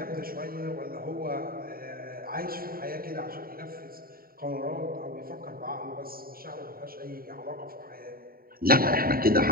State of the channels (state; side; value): late; left; 0.43 ms